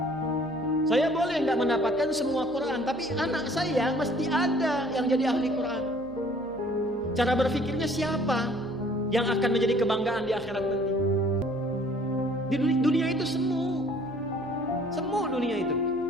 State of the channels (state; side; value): noise; right; hum, 24 dB below the sound